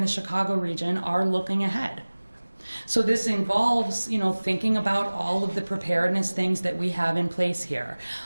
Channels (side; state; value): both; inverted; correlation -1.00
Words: the Chicago region are looking ahead. So this involves, thinking about all of the preparedness things that we have in place here.